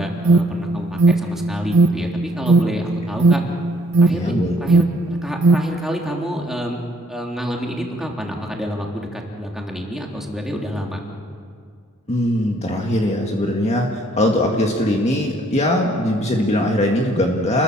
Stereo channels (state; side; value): normal; both; correlation 0.64